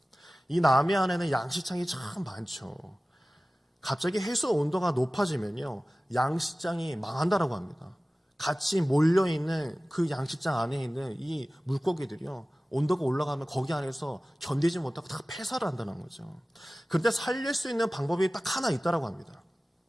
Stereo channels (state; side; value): normal; both; correlation 0.97